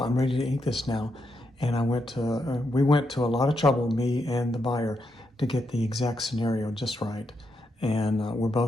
ready to ink this now. And we went to a lot of trouble, me and the buyer, to get the exact scenario just right. And we're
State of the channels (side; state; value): both; normal; correlation 0.81